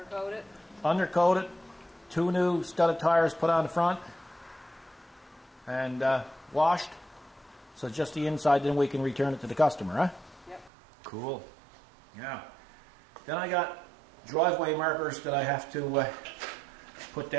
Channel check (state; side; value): drops out; left; at 10.7 s